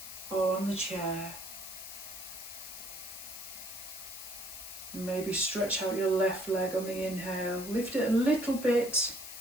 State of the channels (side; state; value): left; noise; hiss, 10 dB below the sound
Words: or on the chair. Maybe stretch out your left leg on the inhale. Lift it a little bit